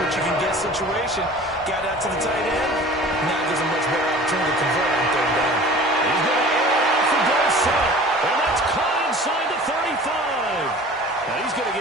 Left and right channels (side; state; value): both; normal; correlation 0.43